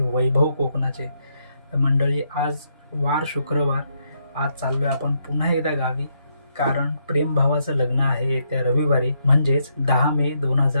कोकणाचे. तर मंडळी, आज वार शुक्रवार. आज चाललो आहे आपण पुन्हा एकदा गावी, कारण प्रेम भावाचं लग्न आहे येत्या रविवारी, म्हणजेच 10 मे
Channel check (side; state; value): both; inverted; correlation -0.76